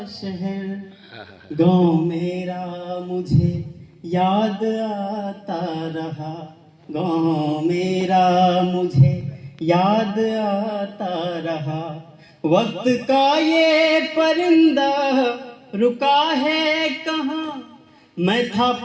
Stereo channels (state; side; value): identical; both; correlation 1.00